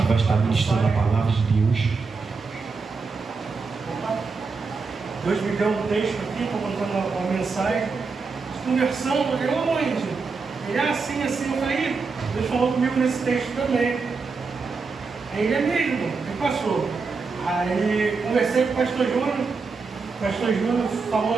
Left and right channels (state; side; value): quieter; left; 4.6 dB